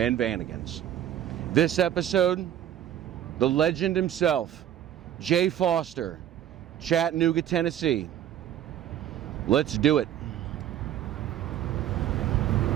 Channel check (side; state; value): left; quieter; 11.2 dB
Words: Vanagons. This episode, the legend himself, Jaye Foster, Chattanooga, Tennessee. Let's do it.